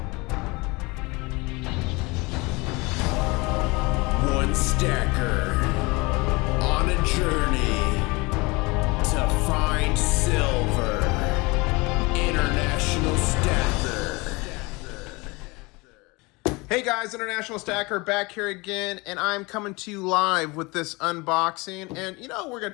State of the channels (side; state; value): right; quieter; 25.4 dB